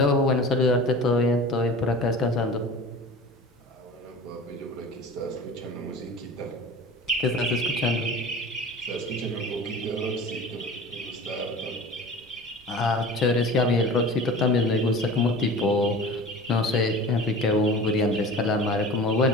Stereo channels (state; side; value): normal; both; correlation 0.38